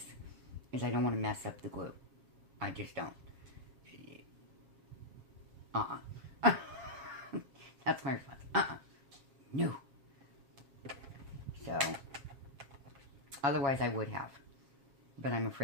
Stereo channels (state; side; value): late; left; 7.3 ms